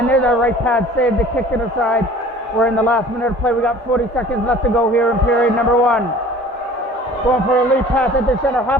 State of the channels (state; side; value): normal; both; correlation 0.47